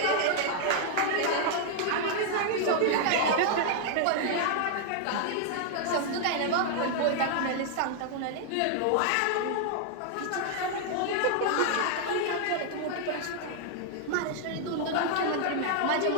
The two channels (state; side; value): different; both; correlation 0.00